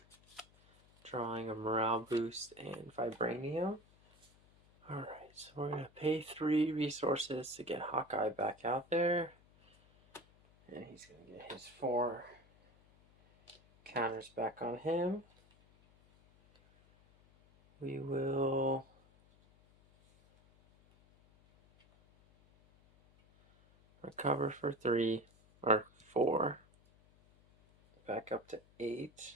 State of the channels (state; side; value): noise; left; hum, 28 dB below the sound